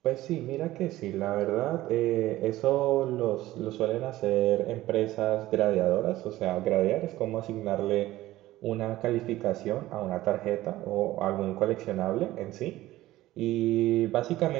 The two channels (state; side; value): quieter; left; 16.2 dB